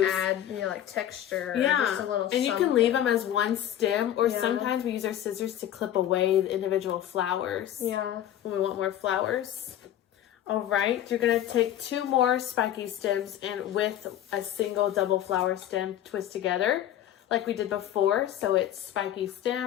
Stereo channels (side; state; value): right; quieter; 11.5 dB